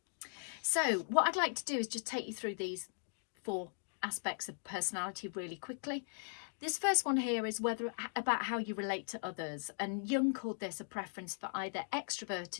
So what I'd like to do is just take you through these 4 aspects of personality really quickly. This first one here is about how you relate to others, and Jung called this a preference for either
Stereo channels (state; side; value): silent; right; digital silence